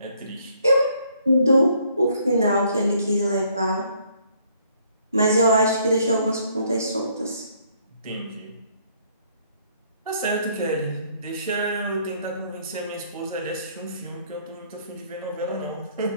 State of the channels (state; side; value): inverted; both; correlation -0.66